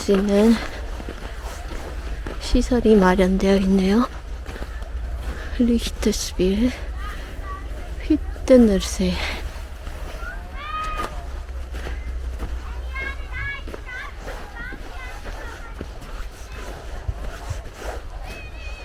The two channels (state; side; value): identical; both; correlation 1.00